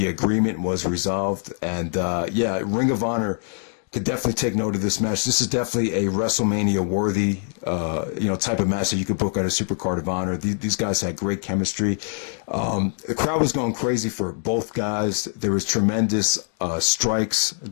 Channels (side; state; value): right; silent; 61 dB below the other